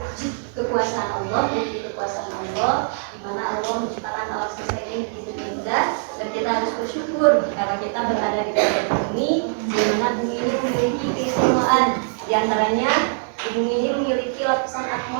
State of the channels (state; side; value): silent; left; digital silence